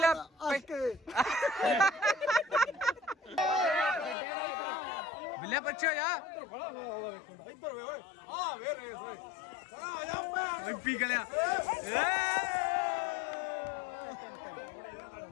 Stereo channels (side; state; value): right; drops out; at 4.2 s